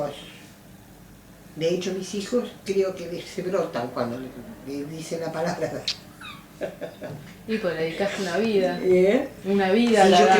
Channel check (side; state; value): both; identical; correlation 1.00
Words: De hecho, mis hijos creo que se brotan cuando le dicen la palabra. Y pues le dedicaste una vida, ¿Eh? una vida Sí, a la yo